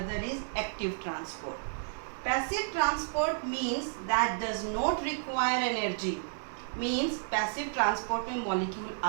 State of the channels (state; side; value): silent; left; digital silence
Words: is active transport. Passive transport means that does not require energy. Means passive transport में molecule